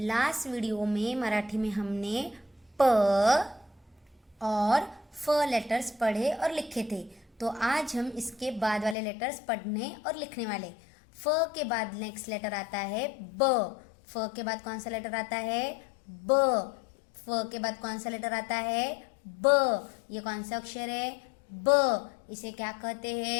video में मराठी में हमने प और फ लेटर्स पढ़े और लिखे थे। तो आज हम इसके बाद वाले लेटर्स पढ़ने और लिखने वाले। फ के बाद नेक्स्ट लेटर आता है ब। फ के बाद कौन सा लेटर आता है? ब। फ के बाद कौन सा लेटर आता है? ब। ये कौन सा अक्षर है? ब। इसे क्या कहते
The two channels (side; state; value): right; drops out; at 9.0 s